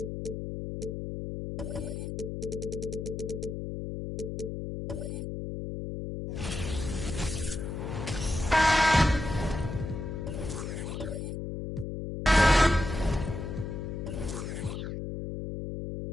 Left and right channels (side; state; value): left; noise; hum, 5 dB below the sound